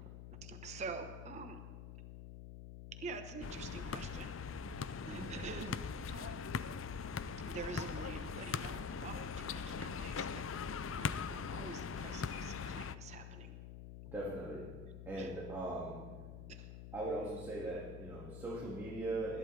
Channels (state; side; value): noise; left; hum, 8 dB below the sound